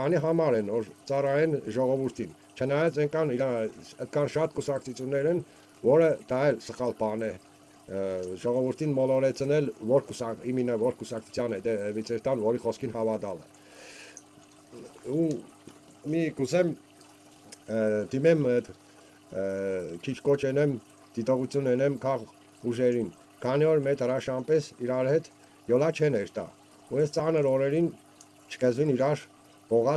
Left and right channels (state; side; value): identical; both; correlation 1.00